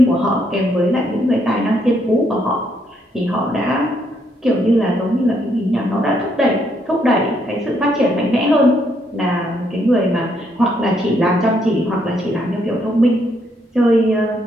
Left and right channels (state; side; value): normal; both; correlation 0.74